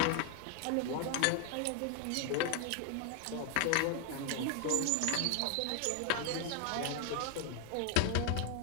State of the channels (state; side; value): different; both; correlation 0.00